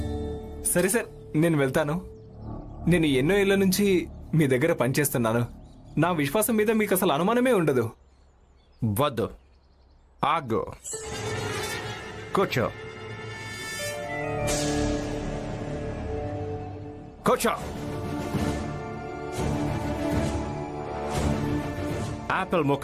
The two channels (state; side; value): identical; both; correlation 1.00